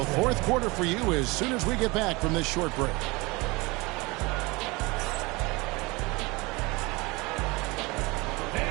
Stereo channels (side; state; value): left; quieter; 24.5 dB